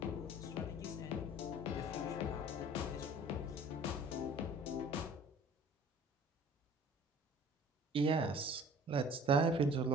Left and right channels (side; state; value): both; normal; correlation 0.48